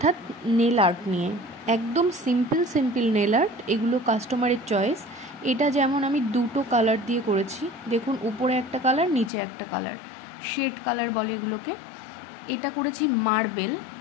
নেল আর্ট নিয়ে। একদম সিম্পল নেল আর্ট। এগুলো কাস্টমারের চয়েস। এটা যেমন আমি দুটো কালার দিয়ে করেছি, দেখুন উপরে একটা কালার, নিচে একটা কালার, শেড কালার বলে এগুলোকে। এটা করেছি মার্বেল,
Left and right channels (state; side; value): drops out; right; at 9.3 s